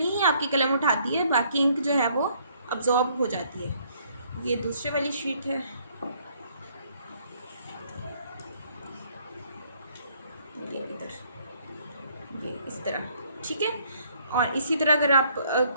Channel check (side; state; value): both; inverted; correlation -0.65